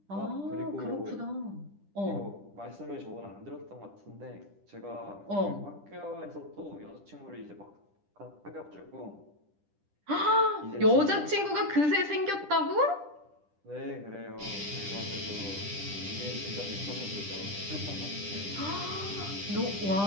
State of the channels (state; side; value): late; left; 10 ms